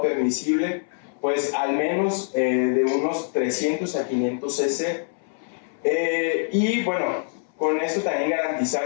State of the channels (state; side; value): silent; right; 62 dB below the other